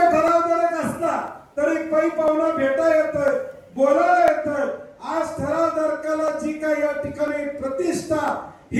असला तरी पै पाहुणा भेटा येतोय, बोलायला येतोय. आज ठरावधारकाला जी काही या ठिकाणी प्रतिष्ठा,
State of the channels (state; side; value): identical; both; correlation 1.00